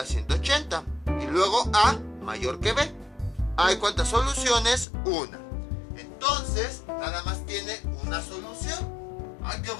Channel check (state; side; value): drops out; right; at 4.9 s